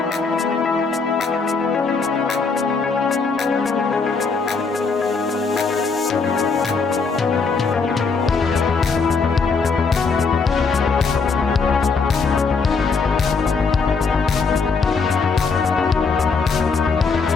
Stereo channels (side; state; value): right; quieter; 4.7 dB